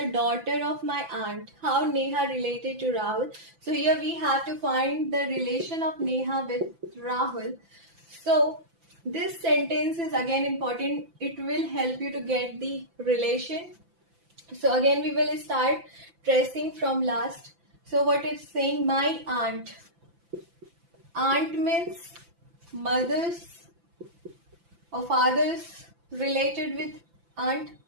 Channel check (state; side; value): late; left; 5.9 ms